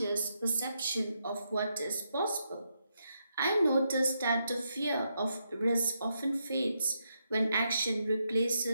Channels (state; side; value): inverted; both; correlation -0.81